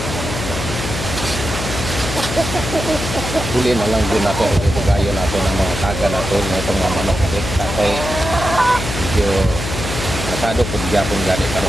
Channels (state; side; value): noise; left; hum, 6 dB below the sound